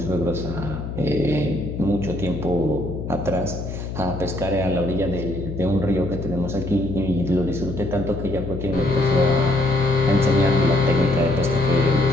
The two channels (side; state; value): left; noise; hum, 7 dB below the sound